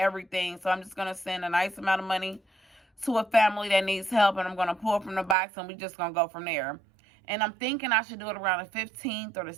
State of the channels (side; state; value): left; drops out; at 5.4 s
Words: So I'm just going to send a nice amount of money to a family that needs help, and I'm going to pull from the box, and we're just going to go from there. And I'm thinking I should do it around the 15th or the